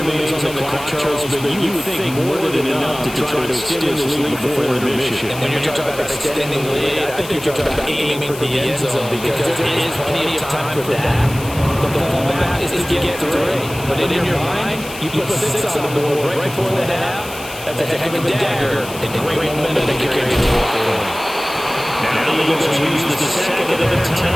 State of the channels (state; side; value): noise; left; hiss, 14 dB below the sound